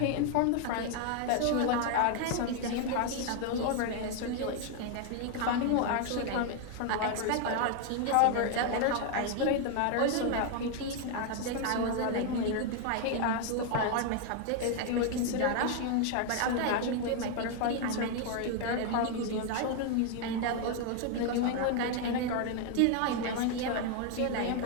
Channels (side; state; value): both; different; correlation 0.01